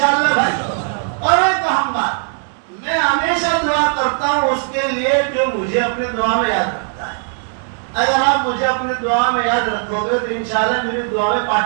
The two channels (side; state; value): left; silent; 58 dB below the other